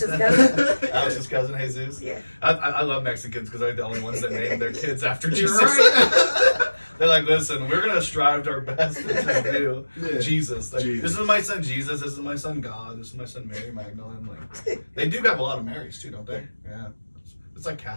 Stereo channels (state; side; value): inverted; both; correlation -1.00